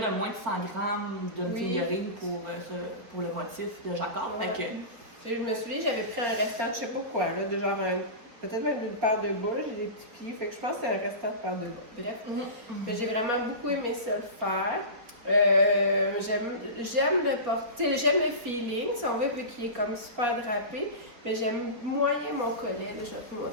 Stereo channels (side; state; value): left; late; 4.6 ms